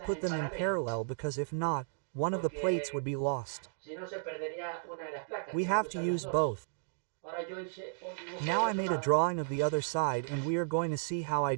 them in parallel, because if not, one of the plates would be lost. We have to use both. Now I made a drawing of the other side and we are going to see how I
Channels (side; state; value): left; silent; digital silence